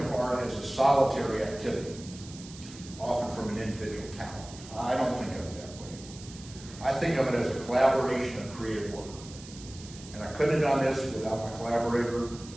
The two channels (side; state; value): right; noise; hiss, 17 dB below the sound